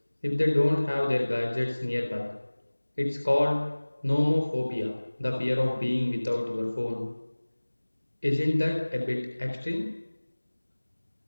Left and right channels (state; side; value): inverted; both; correlation -1.00